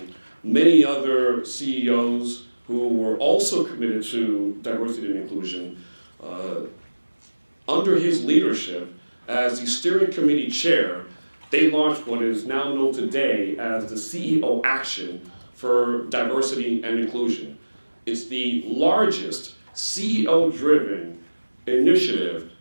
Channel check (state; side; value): inverted; both; correlation -1.00